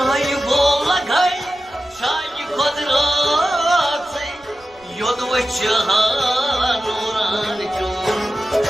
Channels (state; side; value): noise; right; rumble, 30 dB below the sound